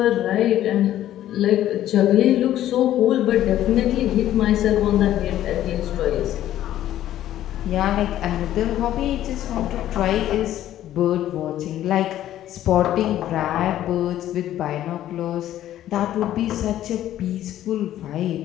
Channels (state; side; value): quieter; right; 12.6 dB